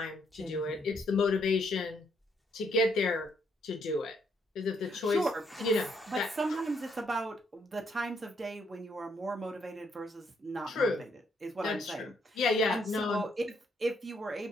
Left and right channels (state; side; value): normal; both; correlation 0.73